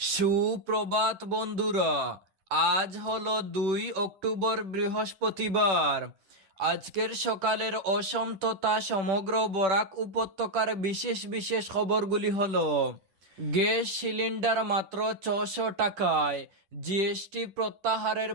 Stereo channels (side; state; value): left; late; 10 ms